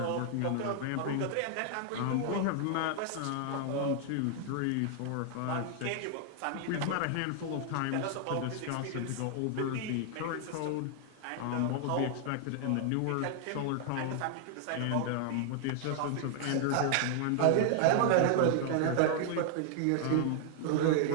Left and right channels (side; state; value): both; different; correlation 0.00